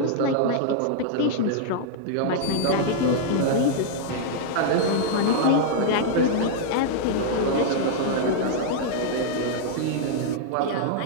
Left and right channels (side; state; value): both; different; correlation -0.01